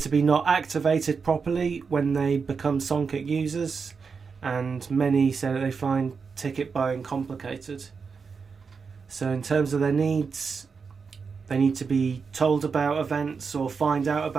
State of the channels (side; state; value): left; quieter; 5.4 dB